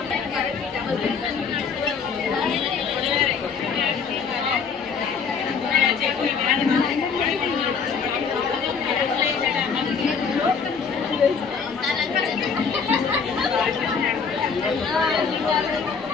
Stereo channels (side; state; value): right; quieter; 5.8 dB